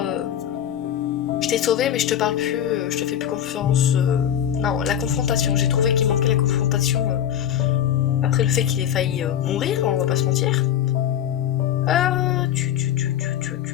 Je t'ai sauvé, mais je te parle plus, je te fais plus confiance. Non, la confrontation. J'ai trouvé qu'il manquait la confrontation. Après le fait qu'il ait failli mourir, on va pas se mentir.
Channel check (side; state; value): right; quieter; 10.1 dB